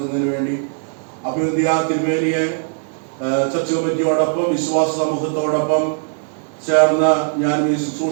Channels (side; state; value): left; silent; digital silence